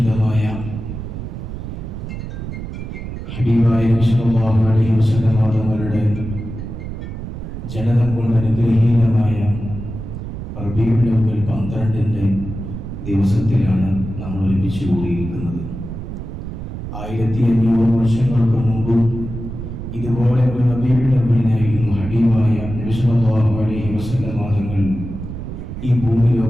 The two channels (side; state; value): right; noise; rumble, 8 dB below the sound